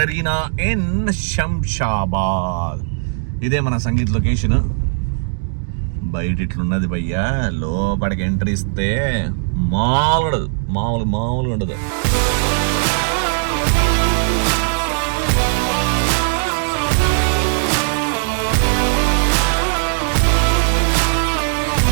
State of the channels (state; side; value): silent; left; digital silence